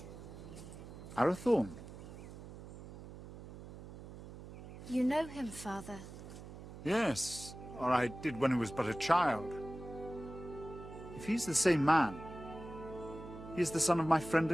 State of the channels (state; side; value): noise; right; hum, 13 dB below the sound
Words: Arathorn? You know him, father? Yes, or I did when he was but a child. If he's the same man, he is the son of my friend